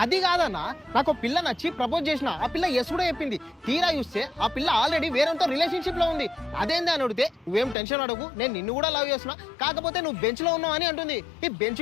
అది కాదన్నా, నాకు పిల్ల నచ్చి ప్రపోజ్ చేసిన, ఆ పిల్ల ఎస్ కూడా చెప్పింది. తీరా చూస్తే ఆ పిల్ల ఆల్రెడీ వేరేతో రిలేషన్షిప్ లో ఉంది. అదేంది అని అడిగితే నువ్వేం టెన్షన్ అడగు, నేను నిన్ను కూడా లవ్ చేస్తున్నా, కాకపోతే నువ్వు బెంచ్ లో ఉన్నావు అని అంటుంది. ఈ బెంచ్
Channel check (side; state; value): right; drops out; at 7.8 s